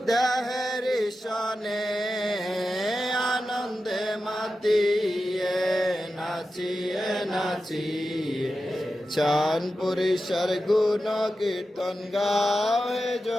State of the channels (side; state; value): both; normal; correlation 0.92